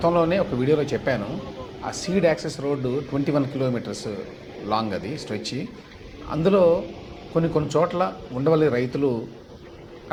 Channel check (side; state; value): both; identical; correlation 1.00